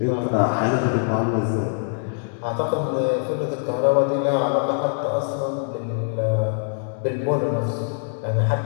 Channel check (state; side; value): silent; right; digital silence